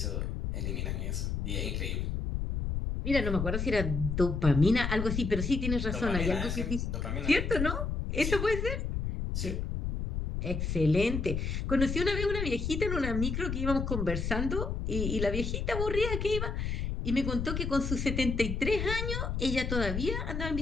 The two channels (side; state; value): left; noise; rumble, 2 dB below the sound